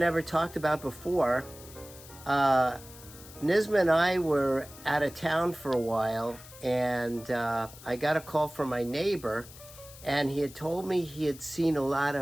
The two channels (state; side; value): noise; left; hiss, 18 dB below the sound